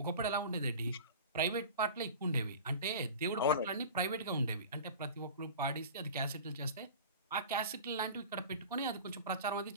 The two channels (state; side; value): inverted; both; correlation -0.36